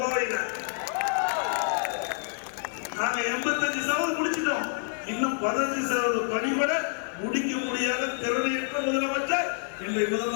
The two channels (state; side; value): silent; right; 59 dB below the other